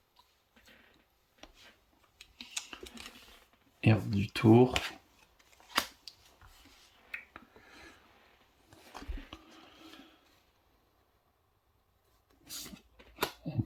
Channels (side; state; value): both; identical; correlation 1.00